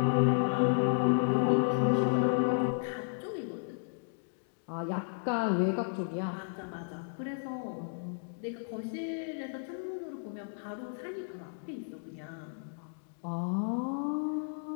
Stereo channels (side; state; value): right; silent; digital silence